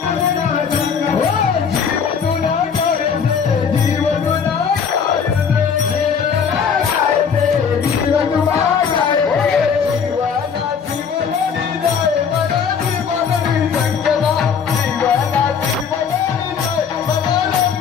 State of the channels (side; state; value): right; quieter; 6.6 dB